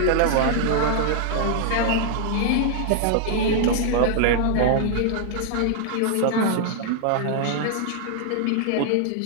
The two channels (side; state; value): both; different; correlation -0.01